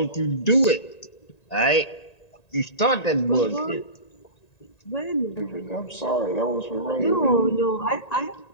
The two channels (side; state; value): right; late; 1.9 ms